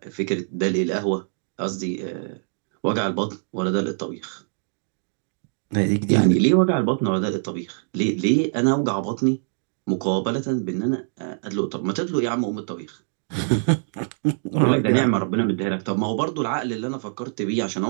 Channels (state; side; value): silent; left; digital silence